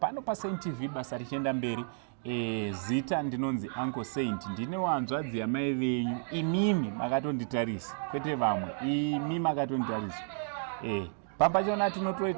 paSaint TV basa richienda mberi. Zita ndinonzi Uncle Saint, ndine wanzvadzi yamai venyu. Imimi makatonditarisa, kwete vamwe. Imi makatonditarisa. Pampachona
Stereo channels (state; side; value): silent; left; digital silence